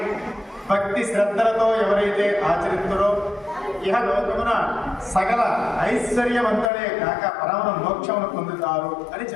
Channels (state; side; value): drops out; right; at 6.7 s